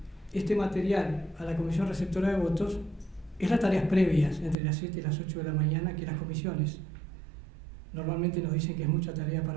este material a la Comisión Receptora de Votos, es las tareas previas entre las 7 y las 8 de la mañana que las comisiones normalmente nos dicen que es mucha tarea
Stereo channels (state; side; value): drops out; left; at 4.5 s